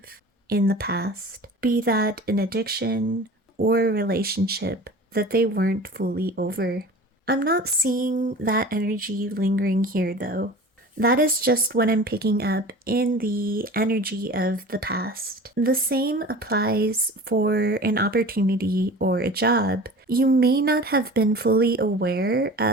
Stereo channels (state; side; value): normal; both; correlation 0.39